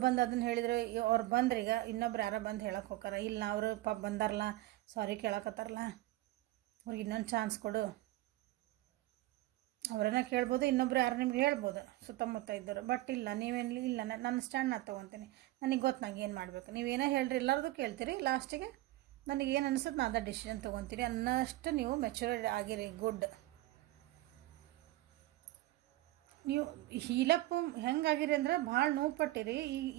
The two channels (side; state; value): left; quieter; 17.4 dB